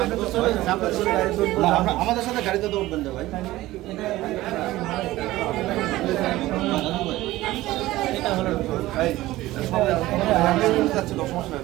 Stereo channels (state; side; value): quieter; left; 17.0 dB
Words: আমাদের সাথে গাড়িতে তো উঠবেন ভাই।